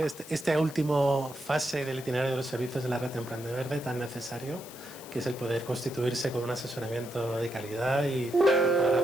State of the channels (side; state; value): left; noise; hiss, 16 dB below the sound